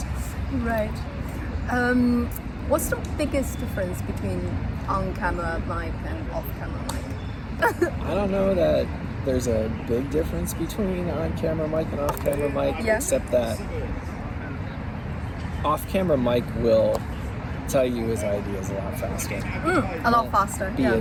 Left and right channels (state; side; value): identical; both; correlation 1.00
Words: Right. What's the biggest difference between on-camera mic and off-camera mic? I don't know that there's a big difference between on-camera mic and off-camera mic, Yeah. except that off-camera mic will tell you his ideas a lot faster. A lot faster. He